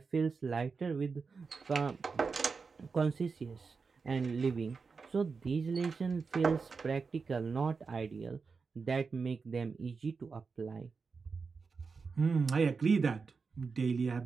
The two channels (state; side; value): quieter; left; 4.9 dB